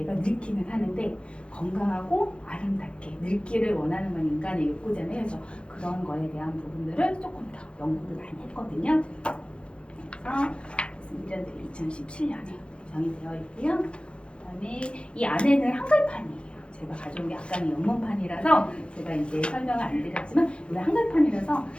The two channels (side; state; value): right; late; 0.057 ms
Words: 늙기는 하는데 건강하고 아름답게 늙기를 원하는 건 인간의 욕구잖아요. 그래서 그런 거에 대한 부분들을 조금 더 연구를 많이 했거든요. 그래서 2017년에 제정이 되어 있고요. 그다음에 이 안에는 한글판이에요. 제가 가져온 게 아까는 영문판이라서 제가 이제 설명을 안 드렸지만 우리 한글판이라서